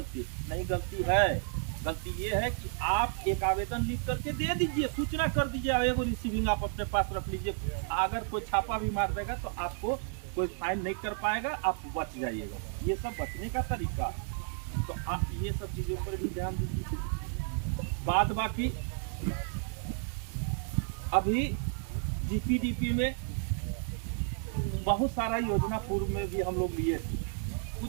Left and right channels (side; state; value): left; silent; 56 dB below the other